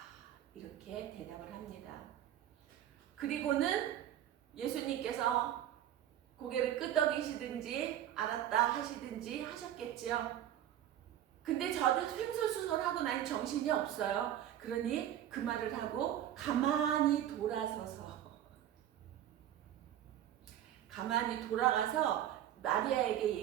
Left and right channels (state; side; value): quieter; left; 11.5 dB